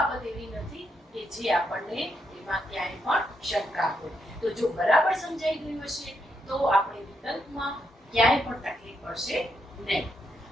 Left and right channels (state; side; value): normal; both; correlation 0.80